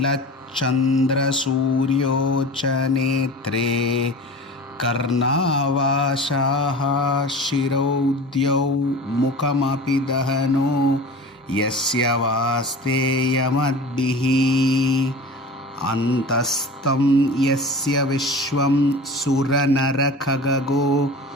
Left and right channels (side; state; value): both; normal; correlation 0.36